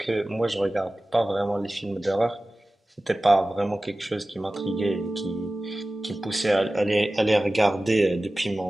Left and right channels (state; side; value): normal; both; correlation 0.96